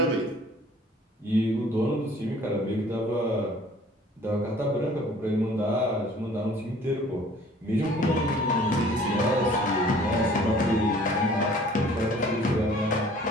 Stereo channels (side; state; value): both; normal; correlation 0.52